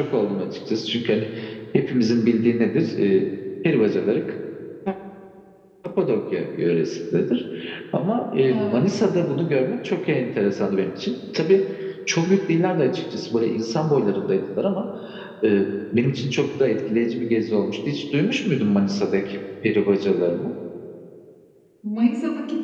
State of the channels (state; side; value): identical; both; correlation 1.00